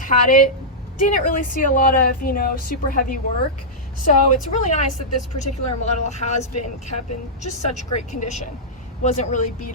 it, didn't really see a lot of, you know, super heavy work. So it's really nice that this particular model has been kept in just such great condition. Wasn't really beat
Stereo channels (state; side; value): normal; both; correlation -0.11